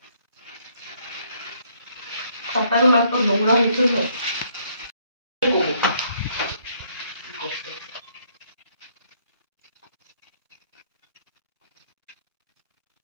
পাতাগুলো তো নোংরা হয়েছে তো।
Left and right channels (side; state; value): both; inverted; correlation -0.68